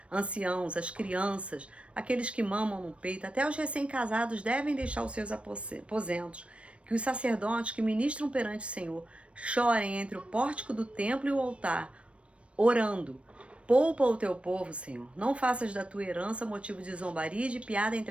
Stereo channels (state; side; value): late; left; 0.061 ms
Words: as crianças, aqueles que mamam no peito, até os recém-casados devem deixar os seus aposentos, que os sacerdotes que ministram perante o Senhor chorem entre o pórtico do templo e o altar, orando: poupa o teu povo, Senhor, não faças da tua herança motivo de zombaria e de piada